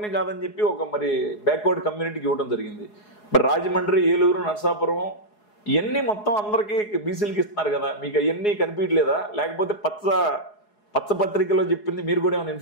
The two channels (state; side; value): late; right; 4.8 ms